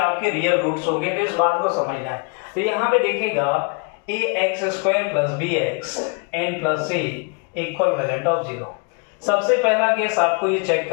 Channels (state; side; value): quieter; right; 33.4 dB